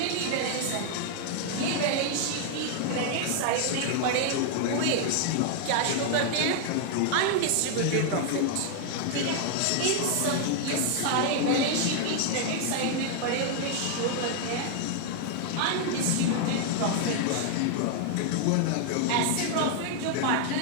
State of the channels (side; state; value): both; different; correlation 0.00